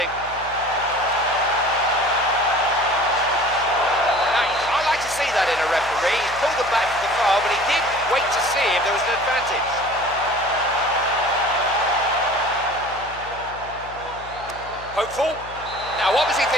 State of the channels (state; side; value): noise; left; hum, 18 dB below the sound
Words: I like to see that in a referee. He's pulled them back for the foul, but he did wait to see if there was an advantage. Hopeful. Now, what was he